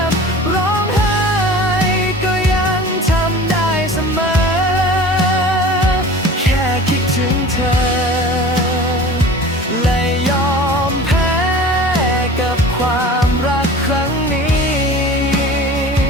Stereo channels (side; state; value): both; normal; correlation 0.40